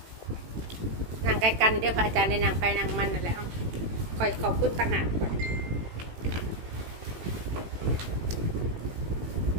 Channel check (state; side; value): late; left; 18 ms